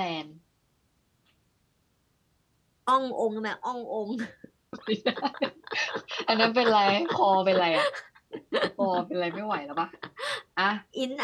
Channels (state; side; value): identical; both; correlation 1.00